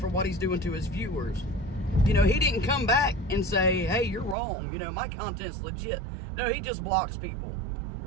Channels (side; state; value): left; drops out; at 4.4 s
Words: what he's doing to his viewers. You know, he didn't come back and say, hey, you're wrong. You know, my content's legit. No, he just blocks people.